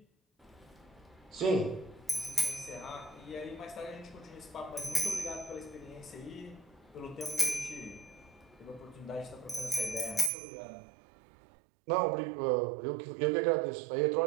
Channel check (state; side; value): drops out; left; at 10.3 s